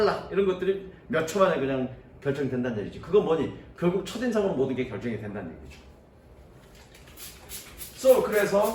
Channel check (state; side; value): identical; both; correlation 1.00